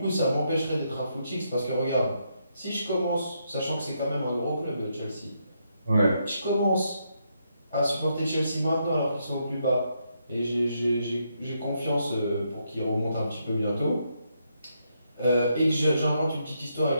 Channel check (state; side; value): inverted; both; correlation -0.79